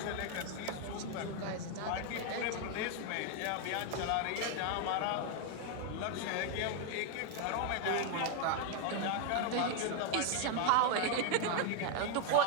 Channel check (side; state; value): both; different; correlation 0.01